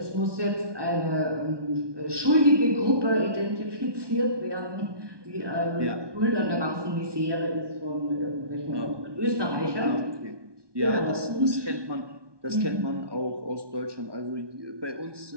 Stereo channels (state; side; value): late; left; 1.2 ms